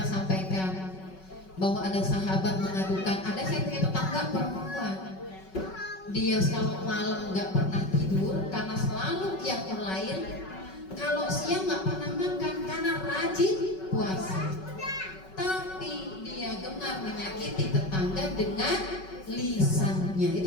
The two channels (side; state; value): right; late; 5.3 ms